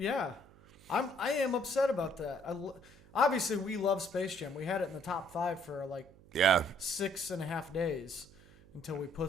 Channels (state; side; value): noise; right; hum, 24 dB below the sound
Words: am upset about that. Obviously, we love Space Jam. We had it in the top 5 for like 6.5 days. Until we